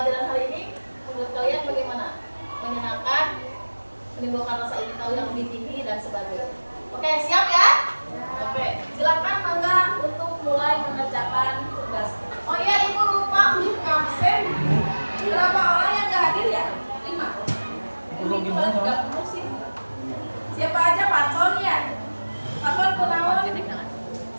hari ini menurut kalian bagaimana? Menyenangkan, menimbulkan rasa ingin tahu yang lebih tinggi dan sebagainya. Oke, siap ya? Oke, silakan mangga untuk mulai mengerjakan tugas. Oh iya, ibu lupa untuk absen. Berapa orang yang nggak hadir ya? 5. Ini cuma 30 sih. Siapa aja Paton ya? Paton Gunawan.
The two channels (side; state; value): both; inverted; correlation -1.00